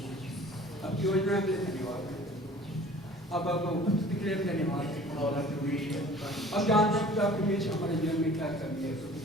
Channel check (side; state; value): both; normal; correlation 0.48